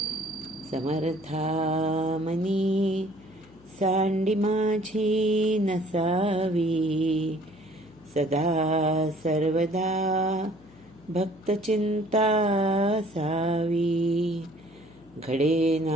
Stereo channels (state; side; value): noise; left; hum, 26 dB below the sound